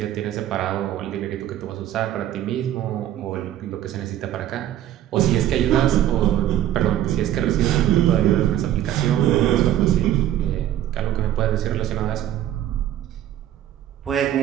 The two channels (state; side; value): quieter; left; 12.1 dB